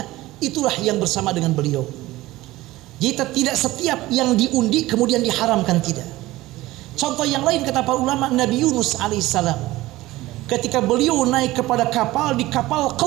itulah yang bersama dengan beliau. Jadi tidak setiap yang diundi kemudian diharamkan, tidak. Contoh yang lain kata para ulama, Nabi Yunus alaihissalam ketika beliau naik kepada kapal, di kapal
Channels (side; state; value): left; quieter; 17.8 dB